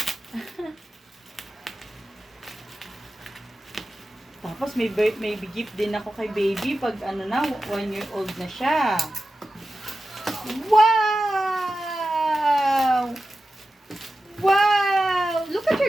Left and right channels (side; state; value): both; normal; correlation 0.93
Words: Tapos may gift din ako kay baby pag ano na, 1 year old na siya. Wow! Wow! Look at